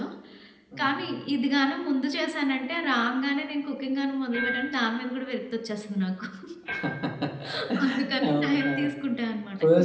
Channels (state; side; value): identical; both; correlation 1.00